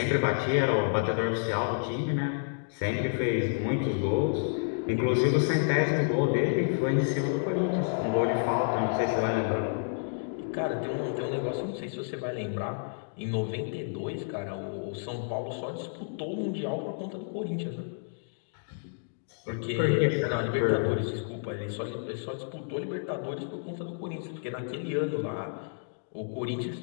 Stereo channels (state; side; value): silent; right; digital silence